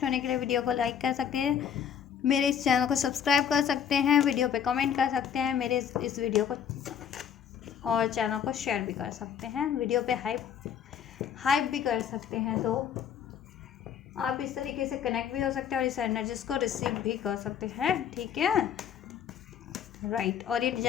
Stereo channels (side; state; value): right; quieter; 8.5 dB